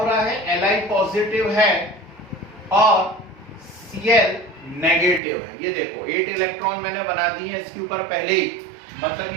रहा है, Li पॉजिटिव है और Cl नेगेटिव है। ये देखो 8 इलेक्ट्रॉन मैंने बना दिए हैं इसके ऊपर पहले ही, मतलब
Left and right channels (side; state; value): left; drops out; at 5.2 s